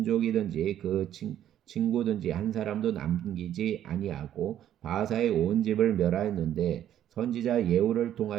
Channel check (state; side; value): quieter; left; 11.1 dB